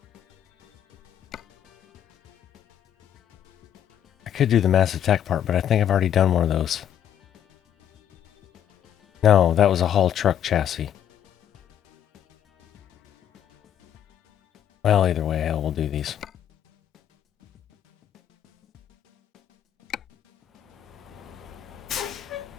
I could do the massive tech part, but I think I've already done one of those. No, that was a haul truck chassis. Well, either way, hell, we'll do these.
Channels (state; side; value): quieter; right; 9.8 dB